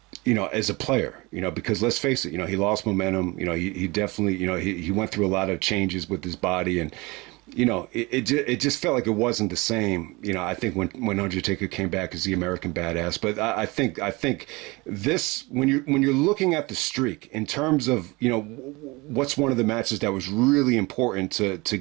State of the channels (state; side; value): quieter; left; 24.3 dB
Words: as a player, because let's face it, he lost momentum. He definitely, he went through a lot of changes with his body, and it just felt like it wasn't the same. I think when Undertaker came back as the American Badass. But I think this, when you're looking at the streak in terms of what's one of the matches that was really important to